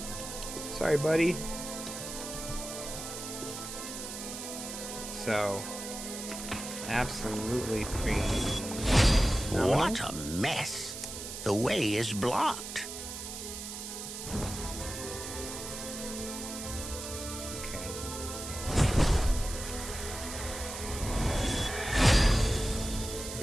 Sorry, buddy. So, absolutely free. No? What a mess. The way is blocked. Okay.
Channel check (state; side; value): noise; right; hiss, 8 dB below the sound